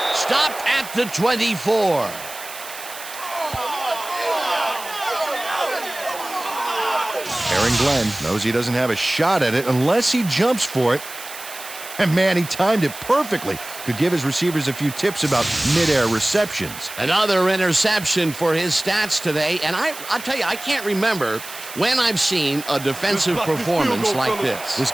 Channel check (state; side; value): noise; right; hiss, 13 dB below the sound